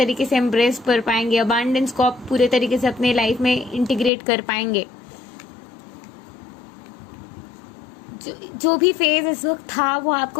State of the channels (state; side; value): drops out; right; at 4.1 s